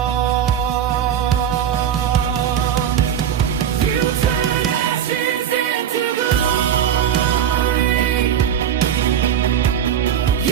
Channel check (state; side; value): quieter; left; 9.2 dB